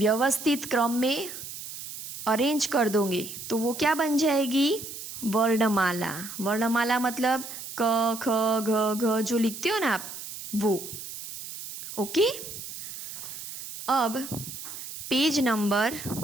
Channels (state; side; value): noise; right; hiss, 10 dB below the sound